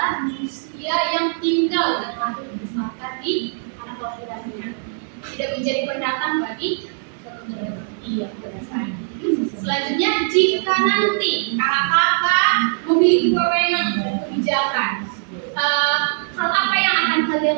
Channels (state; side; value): silent; left; digital silence